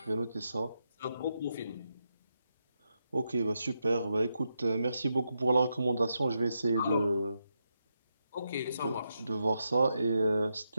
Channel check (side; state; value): both; inverted; correlation -0.84